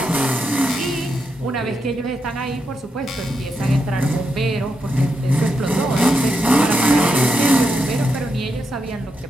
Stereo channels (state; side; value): normal; both; correlation 0.84